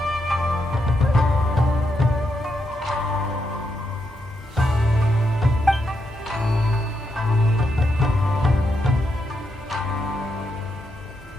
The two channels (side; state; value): both; normal; correlation 0.81